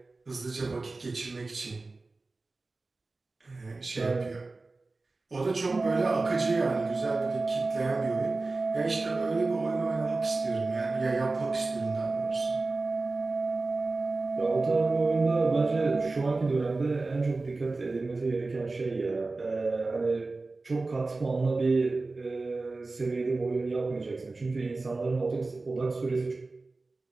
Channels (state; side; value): quieter; left; 3.5 dB